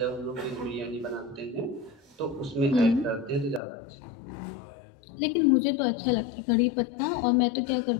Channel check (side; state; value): right; drops out; at 3.6 s